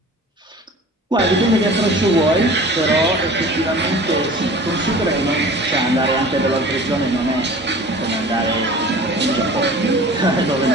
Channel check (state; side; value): normal; both; correlation 0.42